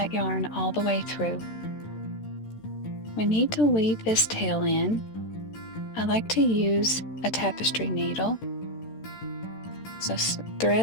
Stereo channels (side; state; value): right; late; 13 ms